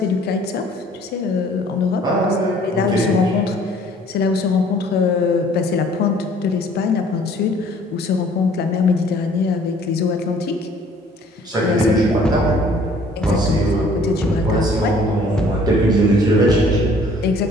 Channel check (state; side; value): normal; both; correlation 0.56